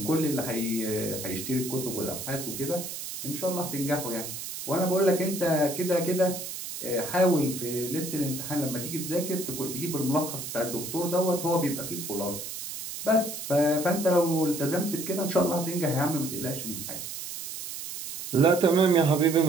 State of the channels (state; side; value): noise; right; hiss, 8 dB below the sound